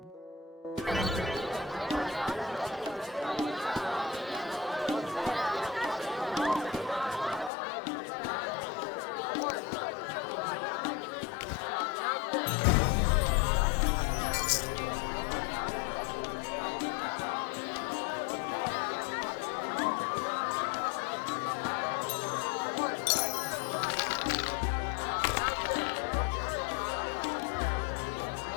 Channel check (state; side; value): drops out; right; at 7.5 s